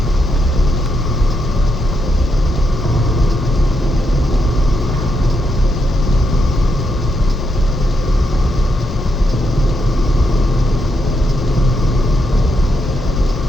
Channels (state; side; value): normal; both; correlation 0.81